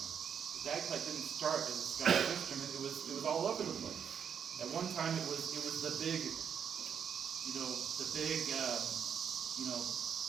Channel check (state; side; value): quieter; left; 7.7 dB